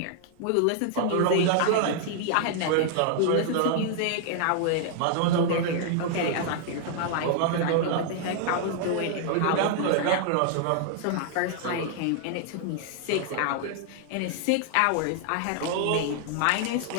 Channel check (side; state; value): both; different; correlation 0.00